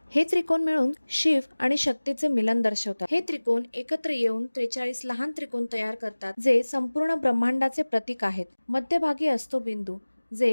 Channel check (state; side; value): inverted; both; correlation -1.00